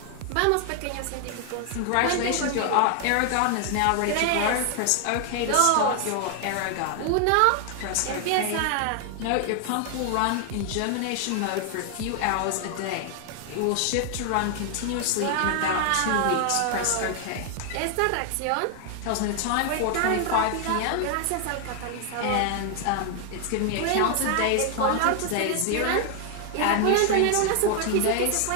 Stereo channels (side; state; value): both; different; correlation 0.00